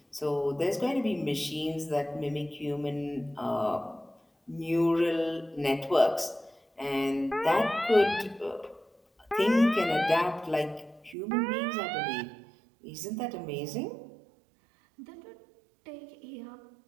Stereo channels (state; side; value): drops out; left; at 11.2 s